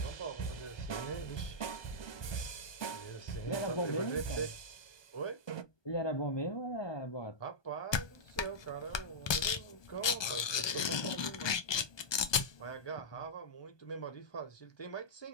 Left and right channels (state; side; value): late; right; 1.2 ms